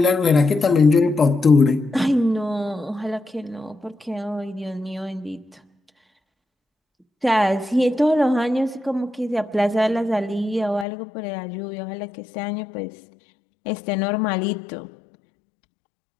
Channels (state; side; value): drops out; right; at 10.9 s